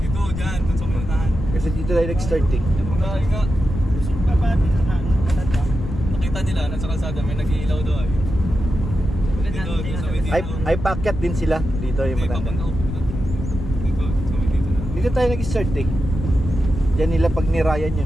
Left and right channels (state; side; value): noise; left; rumble, 6 dB below the sound